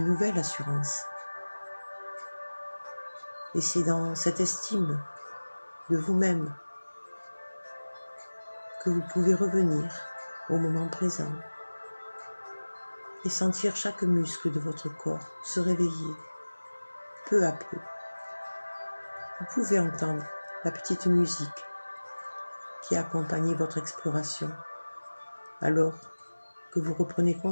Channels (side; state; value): both; inverted; correlation -1.00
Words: nouvelle assurance. Et c'est dans cette estime de vous-même que vous pouvez revenir au moment présent et sentir chaque muscle de votre corps se réveiller peu à peu. Vous pouvez entendre la petite musique qui accompagne votre exploration alors que vous reprenez